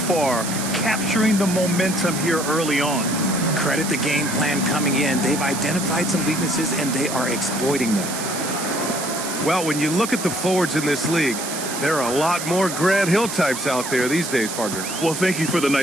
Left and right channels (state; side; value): noise; right; hiss, 6 dB below the sound